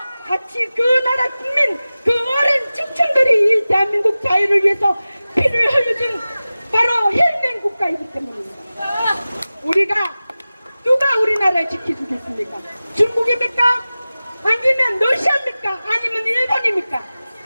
같이 그 나라 국민, 그 어린 청춘들이 이 대한민국 자유를 위해서 피를 흘려준 바로 혈맹 국가이기 때문입니다. 우리가 누가 우리나라를 지켜주겠습니까? 중국입니까? 아니면 러시아입니까? 아니면 일본입니까?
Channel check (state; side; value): inverted; both; correlation -0.96